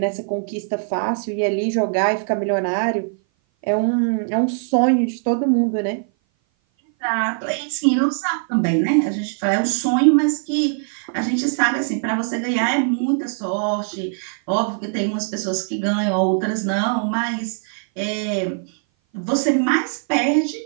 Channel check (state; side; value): silent; left; 58 dB below the other